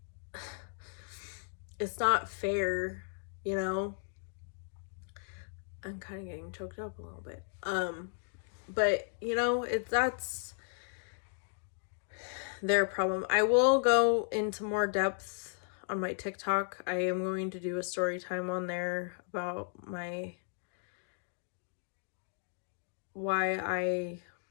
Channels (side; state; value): right; silent; digital silence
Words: fair, I'm kind of getting choked up a little bit. But that's their problem. I will go into more depth on my TikTok. I am going to do a story time on there about why I